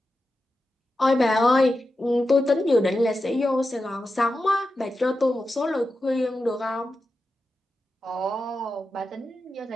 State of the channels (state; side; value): normal; both; correlation 0.90